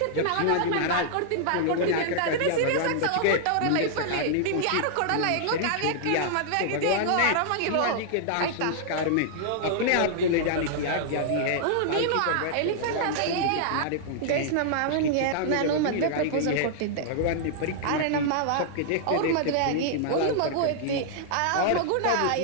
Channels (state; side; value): different; both; correlation -0.01